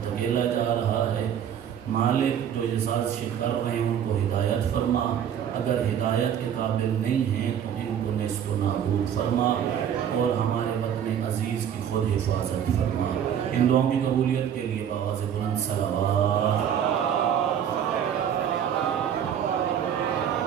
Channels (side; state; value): left; quieter; 9.0 dB